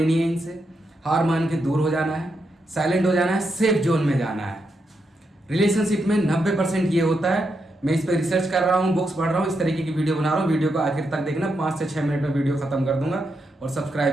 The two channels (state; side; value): normal; both; correlation 0.83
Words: है इनसे। हार मान के दूर हो जाना है, साइलेंट हो जाना है, सेफ जोन में जाना है। रिलेशनशिप में 90% ये होता है। मैं इस पर रिसर्च कर रहा हूँ, बुक्स पढ़ रहा हूँ, इस तरीके की वीडियो बना रहा हूँ। वीडियो को आखिर तक देखना, 5 से 6 मिनट में वीडियो खत्म कर दूंगा। और